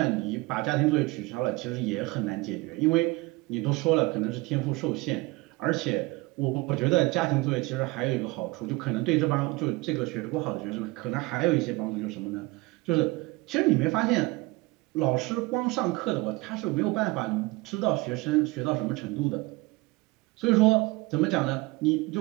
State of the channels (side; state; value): left; quieter; 23.0 dB